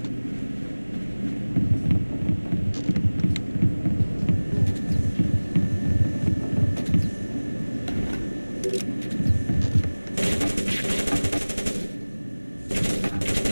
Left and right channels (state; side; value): inverted; both; correlation -1.00